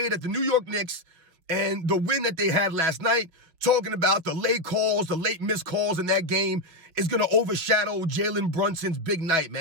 at the New York Knicks and the win that they had last night, talking about the late calls, the late missed calls in that game is going to overshadow Jalen Brunson's big night,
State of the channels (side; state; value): left; late; 6.0 ms